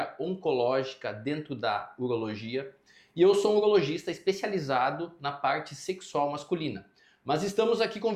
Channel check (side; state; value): both; identical; correlation 1.00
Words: oncológica dentro da urologia. E eu sou um urologista especializado na parte sexual masculina. Mas estamos aqui